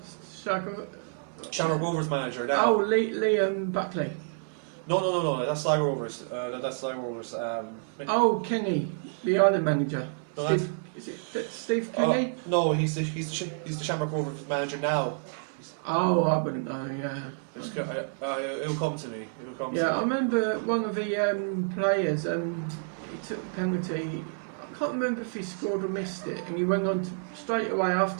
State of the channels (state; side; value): silent; left; 59 dB below the other